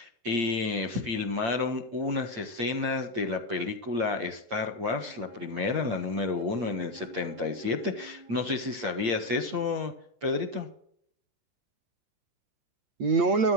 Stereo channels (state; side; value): late; left; 8.6 ms